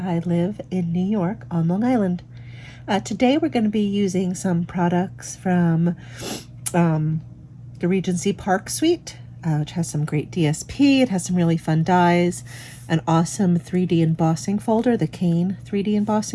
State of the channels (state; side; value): identical; both; correlation 1.00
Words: live in New York on Long Island. Today we're going to be using some products from the Regency Park Suite, which has some great DSP. It has some really fun dies, an awesome 3D embossing folder, the Cane 3D